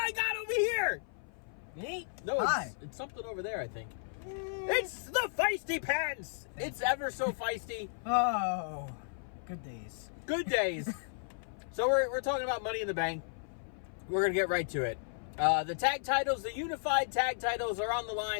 got over here! Me? No, Hi. it's something over there, I think. It's the Feisty Pants! It's ever so feisty. Oh, good days. Good days. So we're talking about Money in the Bank. We're going to get right to it. The tag titles, the unified tag titles are on the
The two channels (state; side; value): silent; right; 55 dB below the other